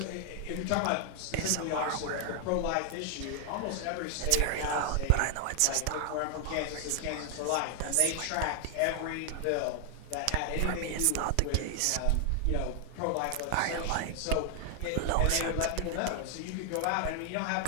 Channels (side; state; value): both; different; correlation 0.00